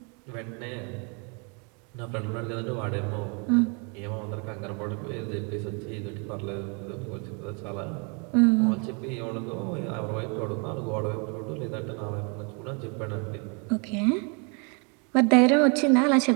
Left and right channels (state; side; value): quieter; left; 35.0 dB